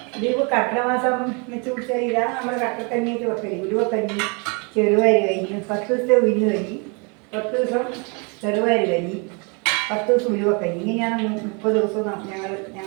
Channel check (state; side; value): quieter; left; 33.2 dB